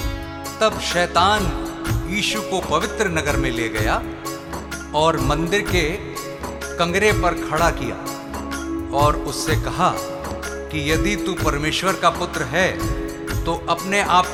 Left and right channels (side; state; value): both; identical; correlation 1.00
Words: तब शैतान यीशु को पवित्र नगर में ले गया और मंदिर के कंगरे पर खड़ा किया और उससे कहा कि यदि तू परमेश्वर का पुत्र है तो अपने आप